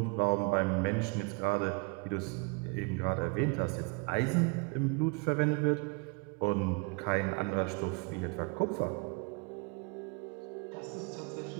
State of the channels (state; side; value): quieter; left; 31.7 dB